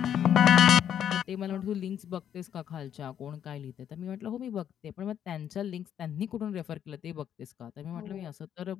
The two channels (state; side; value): quieter; right; 9.5 dB